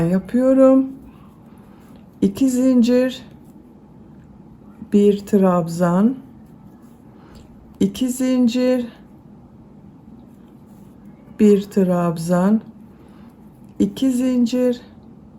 2 zincir, 1 trabzan, 2 zincir, 1 trabzan, 2 zincir,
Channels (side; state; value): both; identical; correlation 1.00